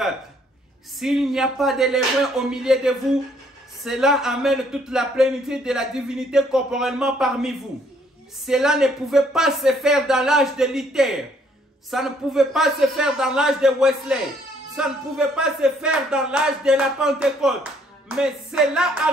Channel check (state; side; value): normal; both; correlation 0.66